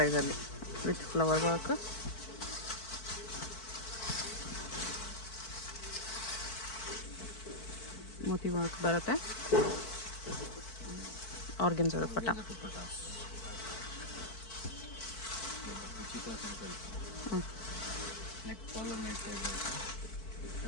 ವಿತ್ ಫ್ಲವರ್ ವರ್ಕ್. ಮೋತಿ ವರ್ಕ್ ಬರುತ್ತೆ. Organza dupatta. Neck collar neck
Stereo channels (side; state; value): right; late; 4.5 ms